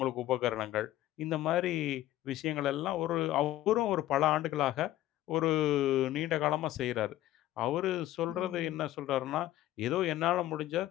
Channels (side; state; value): right; quieter; 14.5 dB